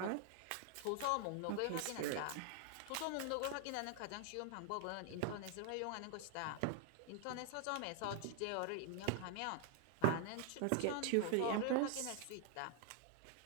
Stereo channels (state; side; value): different; both; correlation 0.00